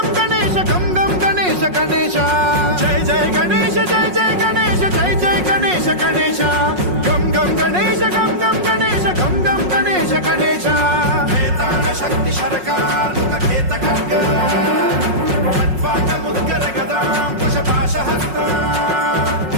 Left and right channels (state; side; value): late; left; 5.5 ms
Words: గణేశ గం గం గణేశ గణేశ జయ జయ గణేశ జయ జయ గణేశ జయ జయ గణేశ గణేశ గం గం గణేశ గం గం గణేశ గం గం గణేశ గణేశ వేతాళ శక్తి శరకార్ ఖేత ఖడ్గ ఖడ్వాట ముద్గర గదాం కుశపాశ హస్త